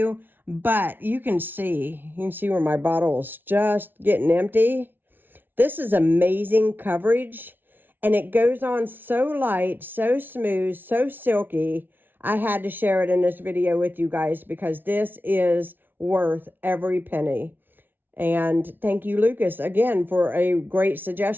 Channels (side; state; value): left; late; 0.095 ms